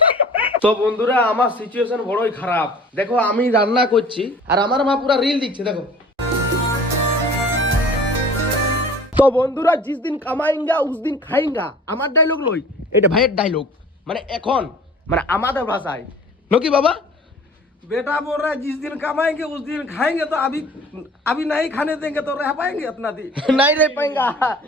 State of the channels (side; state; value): both; normal; correlation 0.46